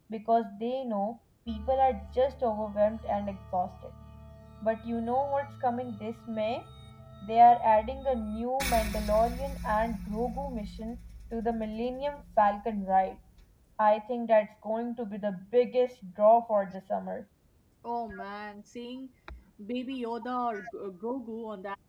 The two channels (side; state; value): both; identical; correlation 1.00